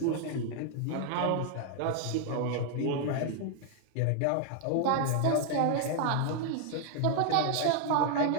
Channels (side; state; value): both; different; correlation -0.01